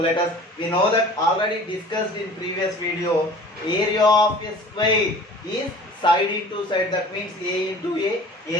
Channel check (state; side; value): normal; both; correlation 0.45